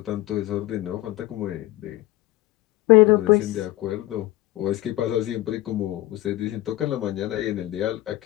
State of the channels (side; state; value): right; quieter; 16.8 dB